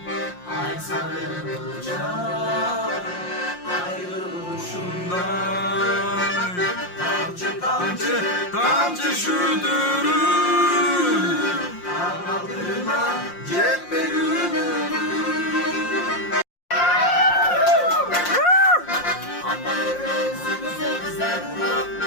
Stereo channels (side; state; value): right; late; 5.7 ms